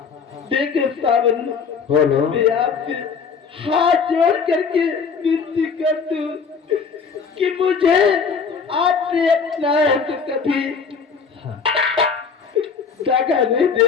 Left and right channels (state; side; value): quieter; right; 5.7 dB